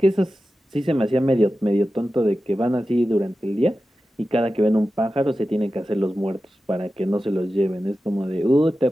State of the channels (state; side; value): normal; both; correlation 0.93